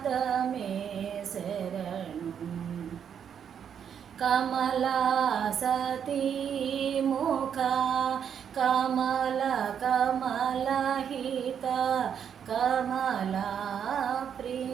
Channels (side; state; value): left; quieter; 8.1 dB